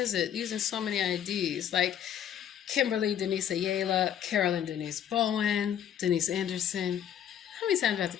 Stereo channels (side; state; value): right; quieter; 9.8 dB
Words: it? Using so many IDs, like Kimberly Denise Ayala, Carolyn Denise Bowen, Denise Anderson. How many times do I have to